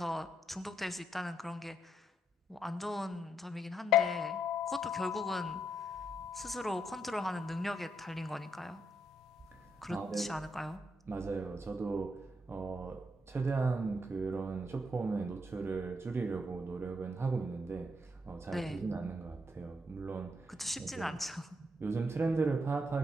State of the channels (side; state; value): both; normal; correlation 0.77